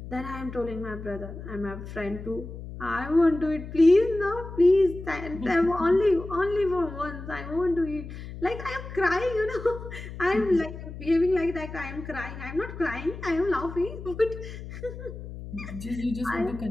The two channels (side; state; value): left; noise; hum, 11 dB below the sound